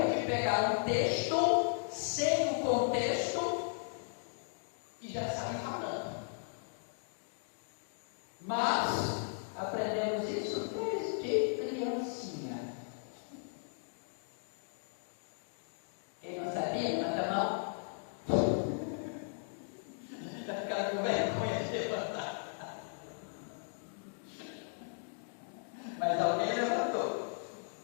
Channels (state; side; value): silent; right; digital silence